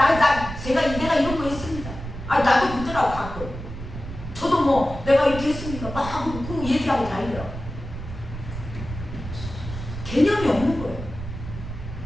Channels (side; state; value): right; noise; rumble, 9 dB below the sound